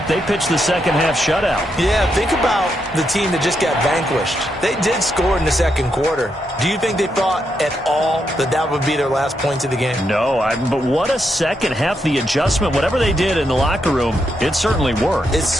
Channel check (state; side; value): normal; both; correlation 0.81